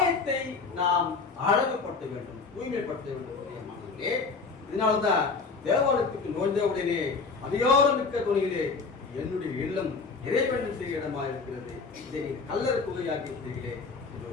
நாம் அழகுபடுத்த வேண்டும், தூய்மைப்படுத்த வேண்டும். இதனால்தான் தேவாலயத்துக்கு நோய்ந்த உடனே அதிகாரம் மிக்க துணியிலே என்னுடைய இல்லம் இறைவன் செய்ய இடமா இருக்கிறது, இதை கல்லர் குகையாக்கி இருக்கிறீர்களே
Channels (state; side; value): quieter; right; 4.6 dB